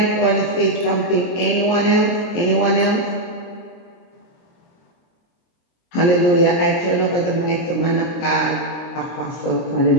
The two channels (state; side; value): late; right; 23 ms